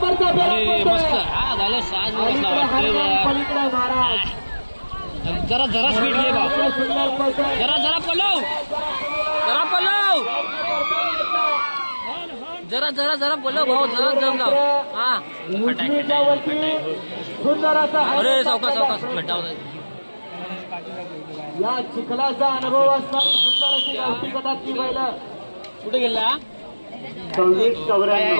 अरे मस्त हा झालं 6 बसला वाटतंय पलीकडे महाराज जरा जरा स्पीड घे बा सुंदर पळतोय. जरा जरा पलव जरा पलव भाऊ जरा जम लाव हा उजवीच्या वरती सुंदर असा अरे सावकाश खड्डा होता या चिखलाचा अनुभव असणारी सुंदर अशी गावठी गटातली बैल कुठे गेला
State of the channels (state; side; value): inverted; both; correlation -1.00